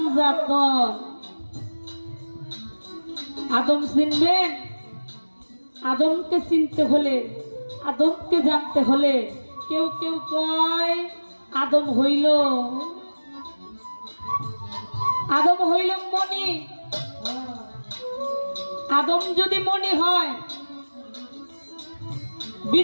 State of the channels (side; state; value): both; inverted; correlation -1.00